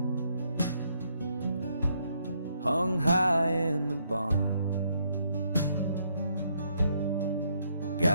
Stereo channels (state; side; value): inverted; both; correlation -0.73